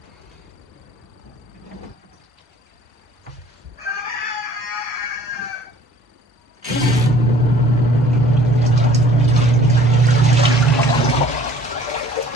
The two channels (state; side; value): normal; both; correlation 0.53